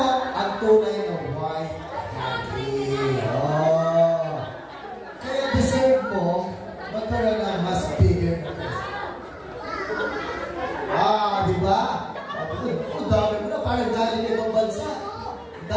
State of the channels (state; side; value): identical; both; correlation 1.00